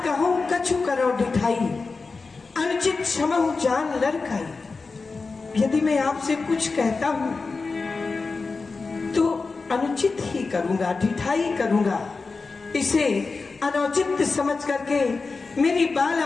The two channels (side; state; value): right; quieter; 4.2 dB